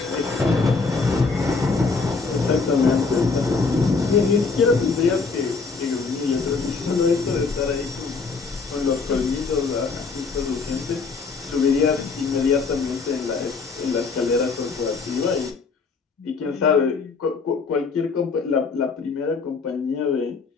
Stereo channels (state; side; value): quieter; right; 4.6 dB